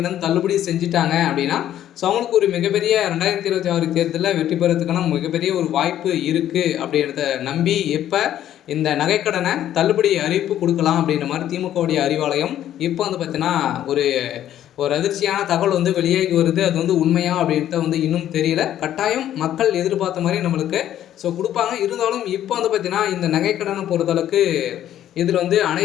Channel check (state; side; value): quieter; right; 11.6 dB